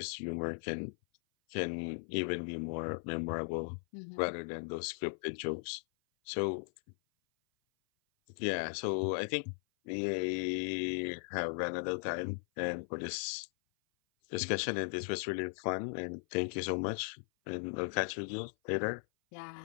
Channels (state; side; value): silent; right; 53 dB below the other